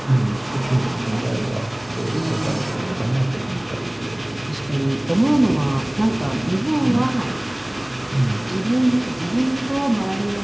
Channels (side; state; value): left; noise; hum, 28 dB below the sound